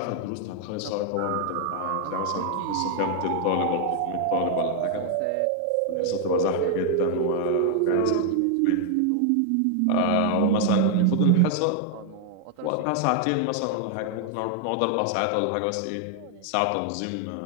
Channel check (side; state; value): both; different; correlation 0.00